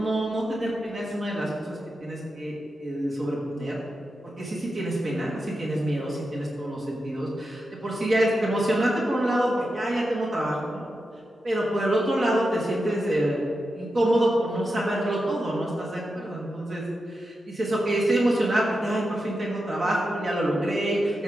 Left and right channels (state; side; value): normal; both; correlation 0.89